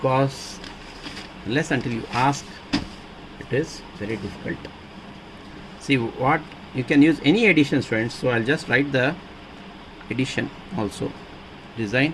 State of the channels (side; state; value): both; identical; correlation 1.00